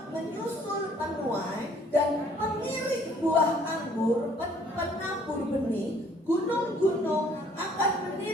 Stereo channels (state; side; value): normal; both; correlation 0.59